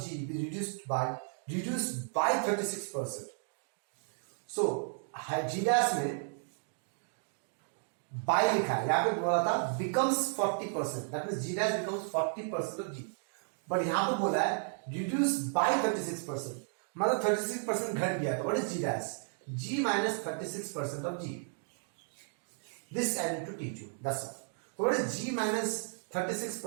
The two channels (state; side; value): silent; left; 55 dB below the other